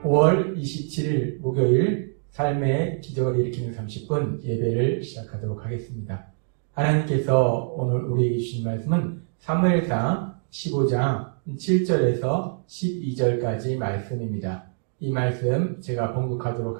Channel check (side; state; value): left; silent; digital silence